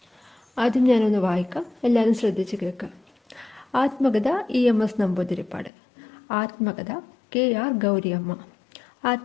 ആദ്യം ഞാനൊന്ന് വായിക്കാം, എല്ലാവരും ശ്രദ്ധിച്ച് കേൾക്കാം. ആത്മകഥ EMS നമ്പൂതിരിപ്പാട്. ആത്മകഥ KR ഗൗരിയമ്മ.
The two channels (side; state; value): right; drops out; at 5.7 s